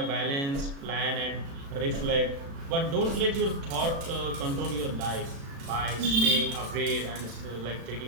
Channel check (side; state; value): left; late; 36 ms